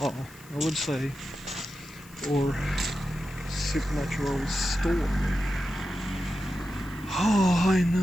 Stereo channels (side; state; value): left; noise; hiss, 23 dB below the sound